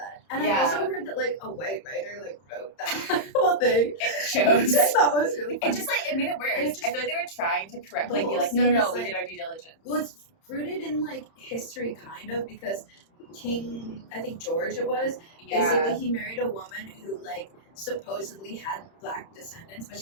And I also heard that, like, a white writer, like, wrote that whole thing. It shows. Which I thought was really funny. It just, like, it made it worse. I feel like they were trying to correct, like, be like, no, we did our due diligence. Well, it's rooted in, like, history, kind of, because King, I think George it was, basically he married a woman who, like, supposedly had black descendants, but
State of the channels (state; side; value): late; right; 31 ms